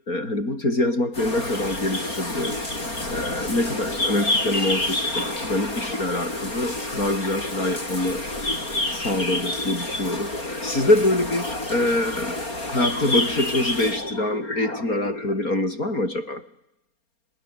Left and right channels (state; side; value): late; right; 4.3 ms